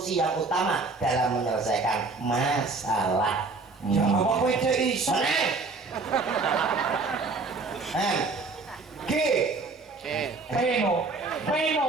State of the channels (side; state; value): left; quieter; 3.9 dB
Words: yang utama dalam menyelesaikan masalah. Ya apa kowe cek iso? G. Peno